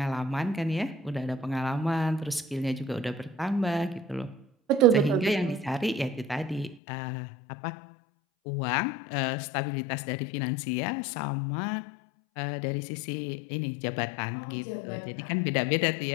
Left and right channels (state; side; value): drops out; right; at 6.8 s